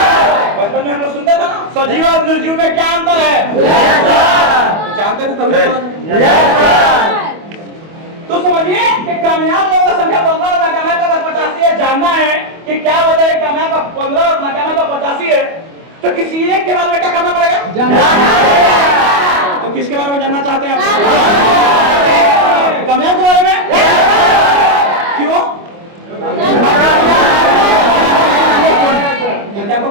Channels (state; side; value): late; left; 25 ms